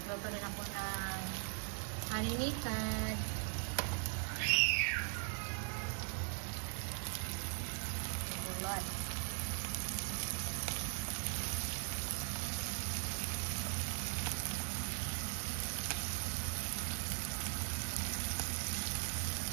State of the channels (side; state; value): left; silent; 51 dB below the other